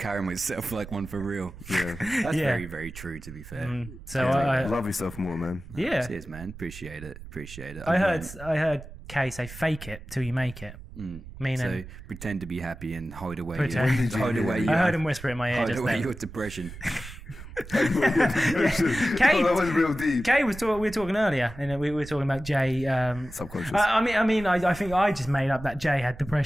myself like one for real. Yeah. That's very, very true, to be fair. So I Love yourself more, man. yeah, Cheers, man. Appreciate it. I heard Kay say fake it till you make it. Meaning, So pretend to be happy and hide away. Pretend. Hide away. I heard him whisper in my ear Hide just away then. your depression. Kay, that went real deep. Kay we were talking earlier, and we were talking about Jay. Subconscious. I think I just made up that Jay had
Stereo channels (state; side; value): noise; right; rumble, 15 dB below the sound